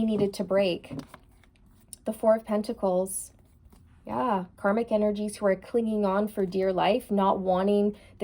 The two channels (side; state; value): both; identical; correlation 1.00